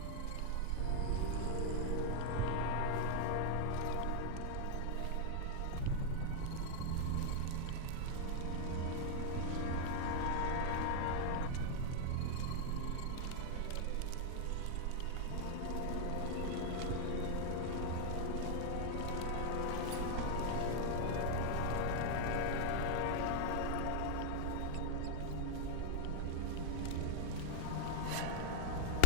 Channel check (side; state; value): both; different; correlation -0.01